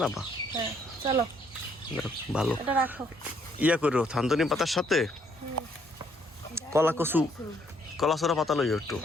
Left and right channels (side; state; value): both; normal; correlation 0.68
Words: না বা? হ্যাঁ চলো, ভালো। এটা রাখো। ইয়া করো, থানতনি পাতার সাথে কলা কচু, কলা সরা পাতা লইও একটু।